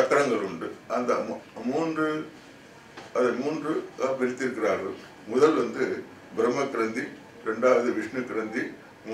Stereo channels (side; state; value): both; identical; correlation 1.00